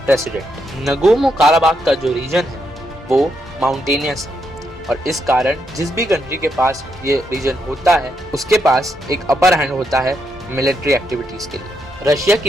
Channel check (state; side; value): normal; both; correlation 0.80